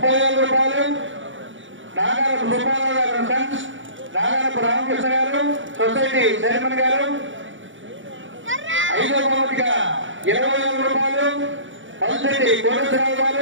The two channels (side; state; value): left; late; 0.56 ms